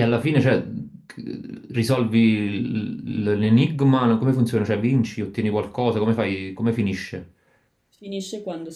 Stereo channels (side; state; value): both; identical; correlation 1.00